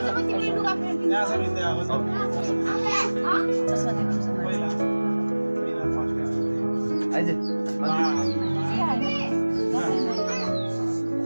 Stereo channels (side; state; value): both; inverted; correlation -1.00